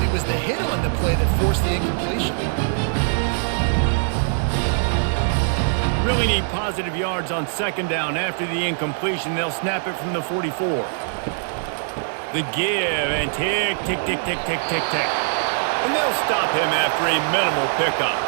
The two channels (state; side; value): silent; left; digital silence